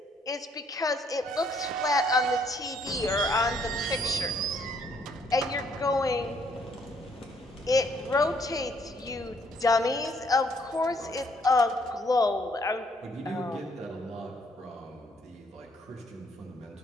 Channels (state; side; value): normal; both; correlation 0.67